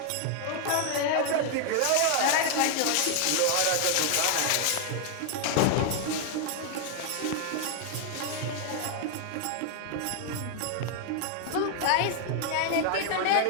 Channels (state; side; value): different; both; correlation 0.00